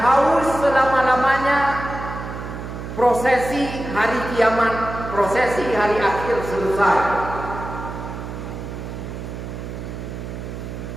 selama-lamanya. Prosesi hari kiamat, prosesi hari akhir selesai.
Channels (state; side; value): noise; right; hum, 8 dB below the sound